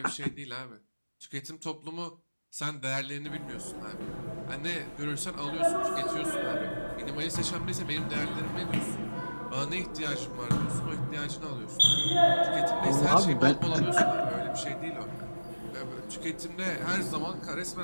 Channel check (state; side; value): inverted; both; correlation -1.00